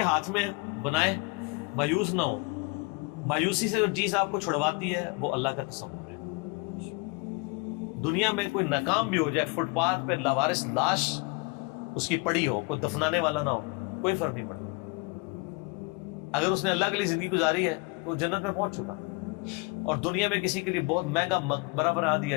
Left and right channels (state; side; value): quieter; right; 29.0 dB